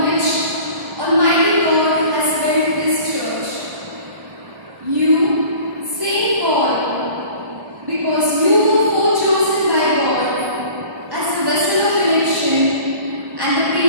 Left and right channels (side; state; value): left; late; 1.0 ms